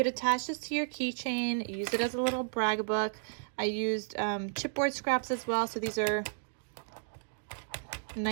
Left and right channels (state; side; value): silent; left; digital silence